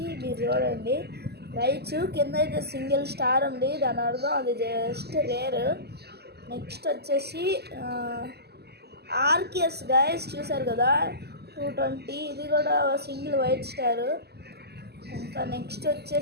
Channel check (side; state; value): left; late; 0.47 ms